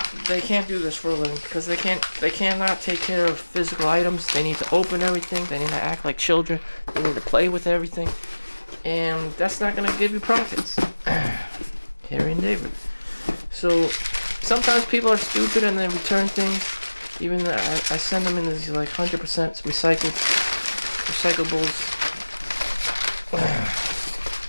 they can't do this for a living because they cannot take care of physical items. They need to open everything. They need to act like children. They need to play with everything, and that's not gonna give you profits. Harry and David. So sometimes people are stupid and they return things. Even though I send them in these like 100% recyclables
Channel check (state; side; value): inverted; both; correlation -1.00